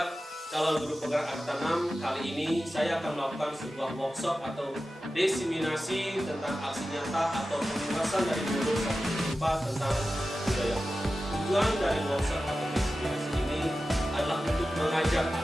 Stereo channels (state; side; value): normal; both; correlation 0.94